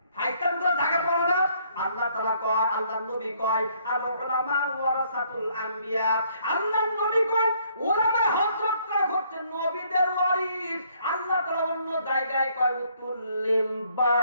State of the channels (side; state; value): both; inverted; correlation -0.66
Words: আল্লাহ তাআলা কয়, আল্লাহর নবী কয় আল উলামা ওয়ারাসাতুল আম্বিয়া, আল্লাহর নবী কয় উলামা হযরতরা হচ্ছে নবীদের ওয়ারিস। আল্লাহ তাআলা অন্য জায়গায় কয় উতুল্লিম